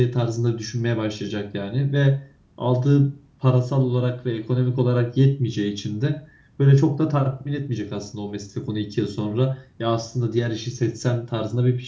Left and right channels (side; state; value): both; identical; correlation 1.00